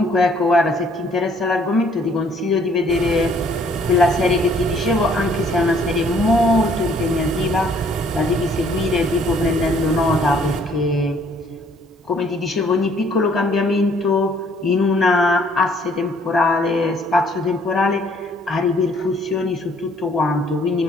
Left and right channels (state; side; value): normal; both; correlation 0.62